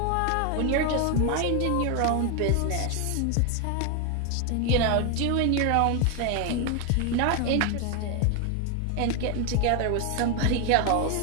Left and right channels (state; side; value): different; both; correlation 0.01